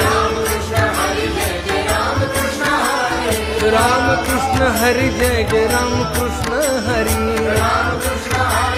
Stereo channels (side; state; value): both; identical; correlation 1.00